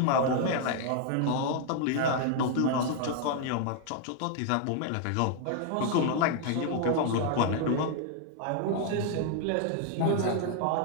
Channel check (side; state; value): both; different; correlation 0.00